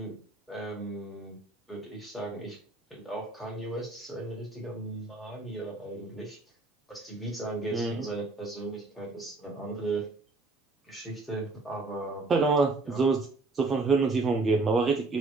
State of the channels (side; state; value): left; quieter; 3.5 dB